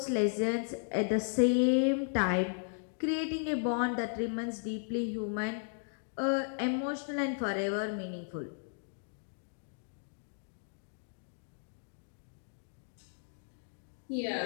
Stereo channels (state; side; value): silent; right; digital silence